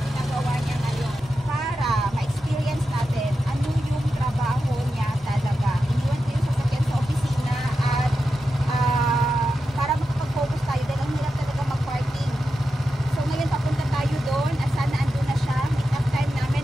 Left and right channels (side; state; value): both; normal; correlation 0.90